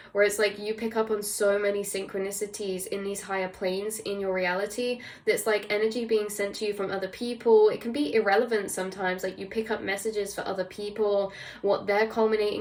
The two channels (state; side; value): identical; both; correlation 1.00